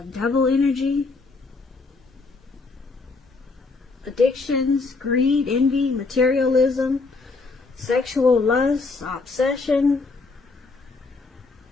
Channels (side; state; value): right; quieter; 3.9 dB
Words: energy, addictions, greed, envy, materialism, sexual lust, obsession.